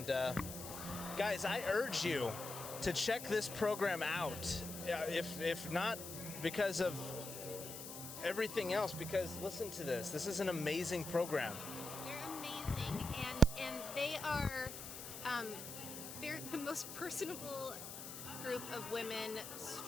guys, I urge you to check this program out. If not because of everything else, because listen to this. This is an amazing program. They're amazing, and they are they're the most personable group of women,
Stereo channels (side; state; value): left; noise; hiss, 9 dB below the sound